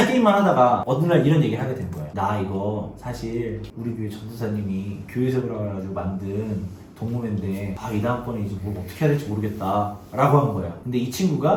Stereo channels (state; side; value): identical; both; correlation 1.00